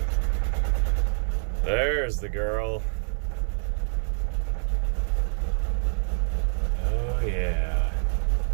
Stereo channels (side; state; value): left; silent; 61 dB below the other